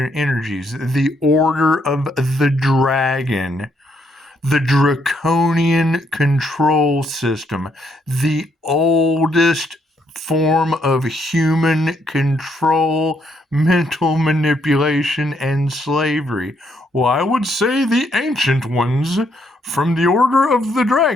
the order of the dragon, the draconian control system, the oldest form of human control, mental manipulation, and slavery. Well, I would say the ancient ones from the Order of the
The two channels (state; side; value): normal; both; correlation 0.74